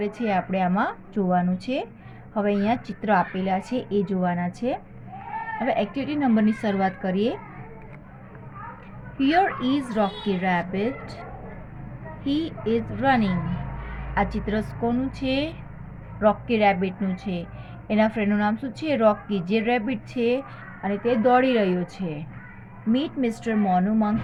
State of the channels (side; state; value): both; identical; correlation 1.00